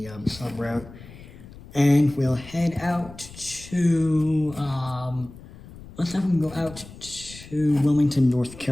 sub route. And we'll head out to, let's have them go out to Wilmington, North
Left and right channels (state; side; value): noise; left; rumble, 18 dB below the sound